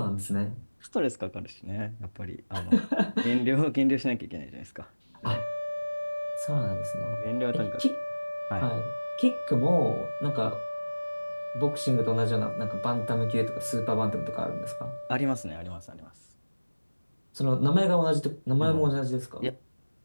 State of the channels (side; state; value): both; inverted; correlation -1.00